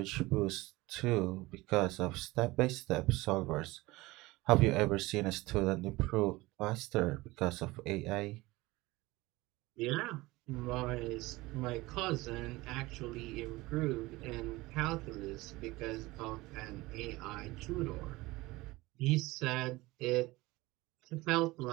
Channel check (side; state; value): left; quieter; 20.5 dB